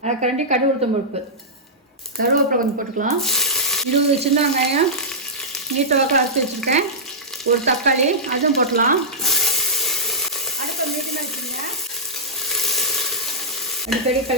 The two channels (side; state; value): both; normal; correlation -0.11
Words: 1/2 கரண்டி கடுகு உளுத்தம் பருப்பு, கருவேப்பிலை கொஞ்சம் போட்டுக்கலாம். 20 சின்ன வெங்காயம் நீட்ட வாக்கில் அரைச்சி வச்சுருக்கேன். ஒரு தக்காளி அதுவும் போட்டலாம். அடுப்பை மீடியமாக வச்சுருங்க. அடிக்கடி